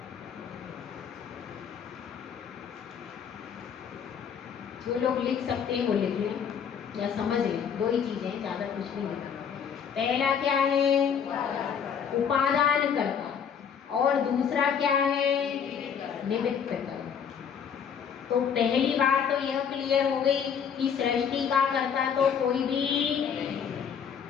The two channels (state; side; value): quieter; right; 7.4 dB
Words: जो लोग लिख सकते हैं वो लिख लें या समझ लें, दो ही चीजें, ज्यादा कुछ नहीं है। पहला क्या है? उपादान कर्ता, और दूसरा क्या है? निमित्त कर्ता। तो पहली बात तो यह क्लियर हो गई कि सृष्टि का कर्ता तो कोई भी